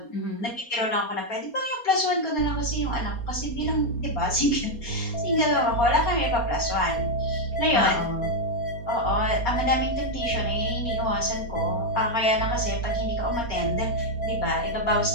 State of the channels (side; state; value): right; late; 4.3 ms